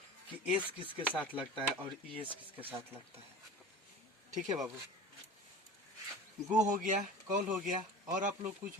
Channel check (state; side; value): normal; both; correlation 0.36